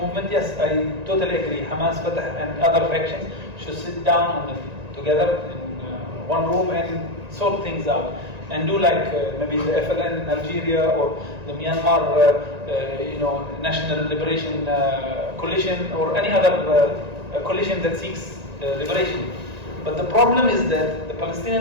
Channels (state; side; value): late; left; 1.9 ms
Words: yes, I totally agree. Hamas, Fatah, and other factions should sit down together in one room and sort things out. And do like maybe the FLN in Algeria or the Myanmar, National Liberation Coalition or any other coalition that seeks liberation. But the problem is that the